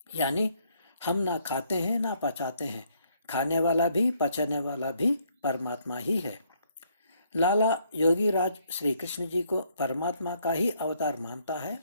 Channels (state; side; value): inverted; both; correlation -0.69